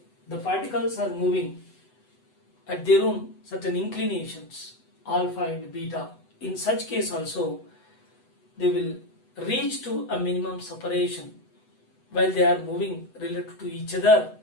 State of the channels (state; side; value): late; right; 8.0 ms